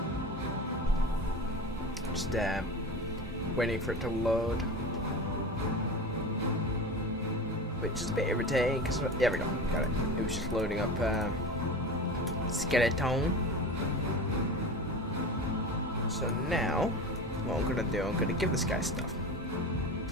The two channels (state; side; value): normal; both; correlation 0.29